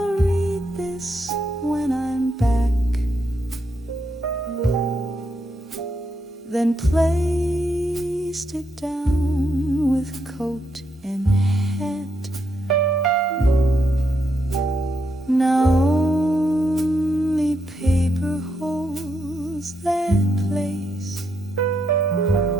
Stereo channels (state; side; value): normal; both; correlation 0.80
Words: read this when I'm back, then placed it down with coat and hat. Now only paper holds that place,